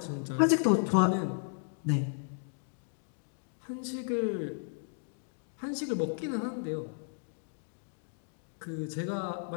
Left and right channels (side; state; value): right; silent; digital silence